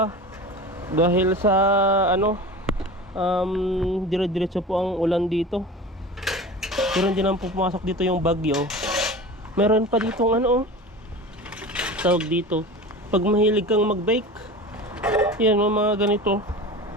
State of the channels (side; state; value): both; normal; correlation 0.34